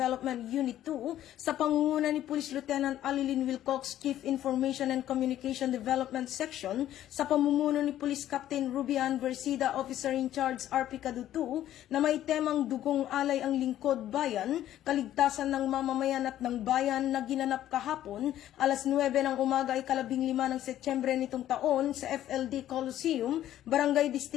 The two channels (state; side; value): quieter; right; 12.4 dB